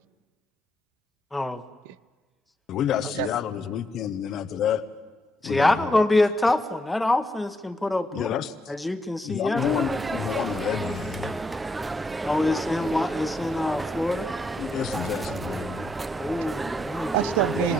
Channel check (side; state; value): both; normal; correlation 0.78